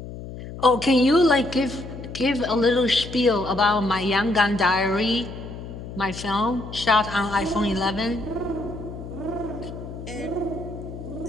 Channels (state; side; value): noise; left; hum, 11 dB below the sound